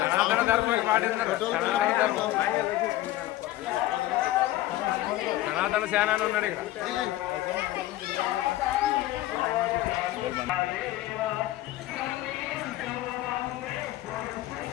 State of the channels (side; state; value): right; quieter; 15.6 dB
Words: ధర్మం పాటిస్తున్నారు. సనాతన సేనాని ఉన్నాడు ఇక్కడ.